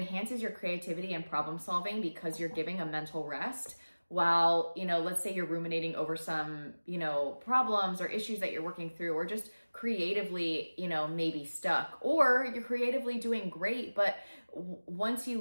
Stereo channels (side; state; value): both; inverted; correlation -1.00